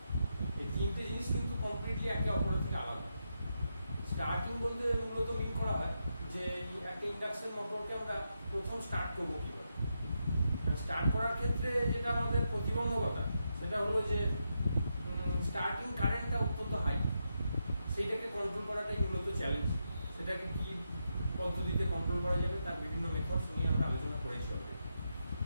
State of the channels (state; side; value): inverted; both; correlation -0.84